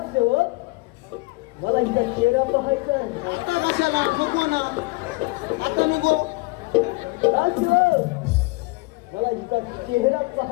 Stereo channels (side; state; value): right; quieter; 24.6 dB